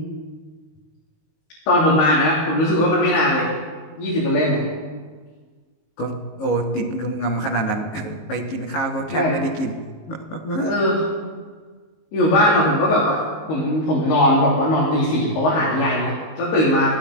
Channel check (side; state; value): right; late; 19 ms